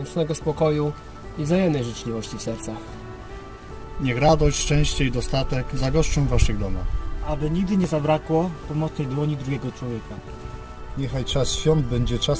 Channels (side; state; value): both; identical; correlation 1.00